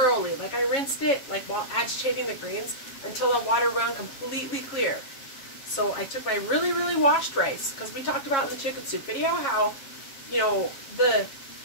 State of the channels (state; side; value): late; right; 7.3 ms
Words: Like I rinsed it like while agitating the grains until the water ran completely clear. So I took my really washed rice, because we talked about in the chicken soup video how, you know, the